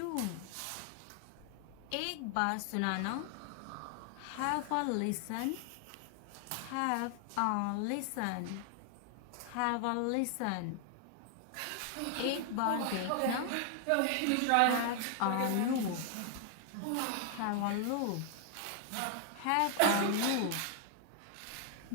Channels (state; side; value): different; both; correlation 0.00